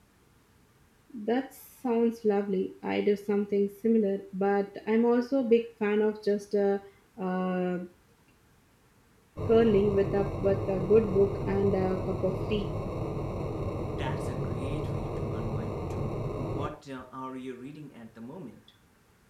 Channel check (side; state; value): both; identical; correlation 1.00